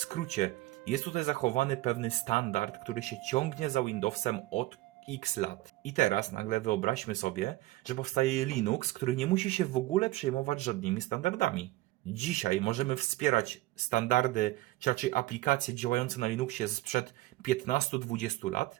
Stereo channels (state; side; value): quieter; left; 17.9 dB